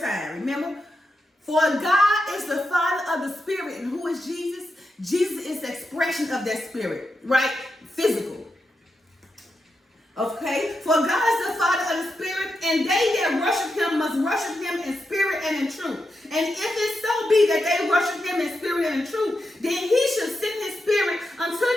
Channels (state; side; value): normal; both; correlation 0.86